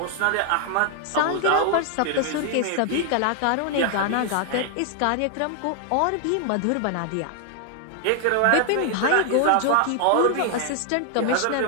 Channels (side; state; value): both; different; correlation 0.00